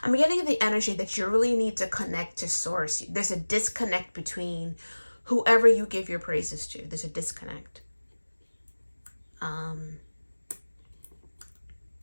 I'm getting the energy that you really need to connect to source. There's a disconnect between whoever you give your praises to. There's a disconnect.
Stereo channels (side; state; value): both; inverted; correlation -1.00